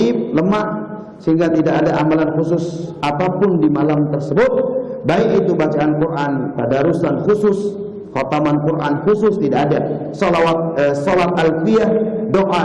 lemah, sehingga tidak ada amalan khusus apapun di malam tersebut, baik itu bacaan Quran, tadarusan khusus, khataman Quran khusus, tidak ada. Salat alfiyah,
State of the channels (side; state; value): both; identical; correlation 1.00